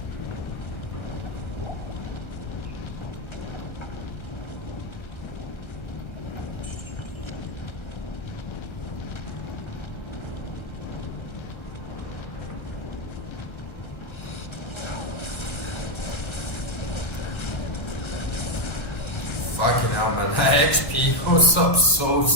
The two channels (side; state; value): right; late; 1.3 ms